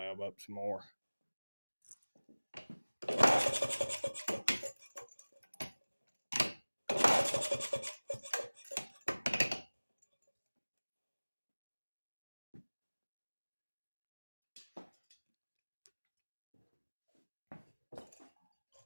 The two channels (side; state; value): both; inverted; correlation -1.00